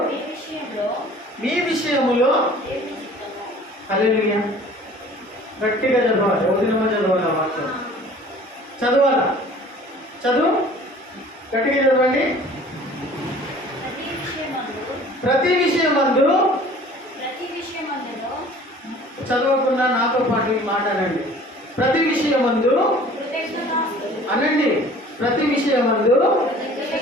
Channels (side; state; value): both; normal; correlation 0.48